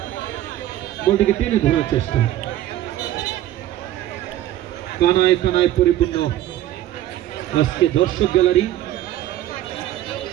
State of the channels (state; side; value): quieter; left; 13.5 dB